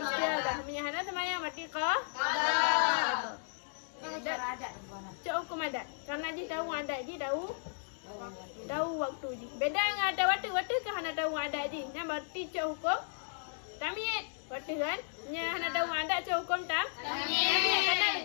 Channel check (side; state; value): right; silent; digital silence